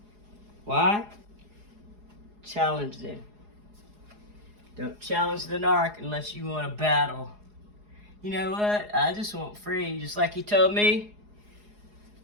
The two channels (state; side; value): late; left; 4.8 ms